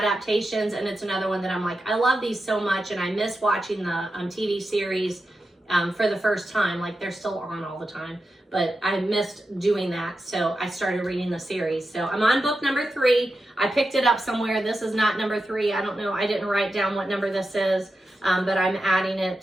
and it's another one that I'm like, I love these so much, and I miss watching the TV series for the first time. Like, they're still on all the time, but I missed doing that, so I started reading the series. So I'm on book number 3. I picked it up somewhere. This is not number 3. I don't know. I didn't write down what number this is. But I'm adding it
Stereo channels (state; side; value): normal; both; correlation 0.90